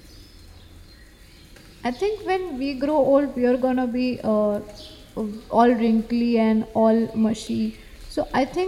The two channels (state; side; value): identical; both; correlation 1.00